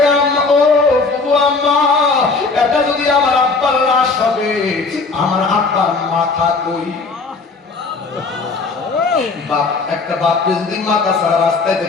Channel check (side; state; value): right; quieter; 4.1 dB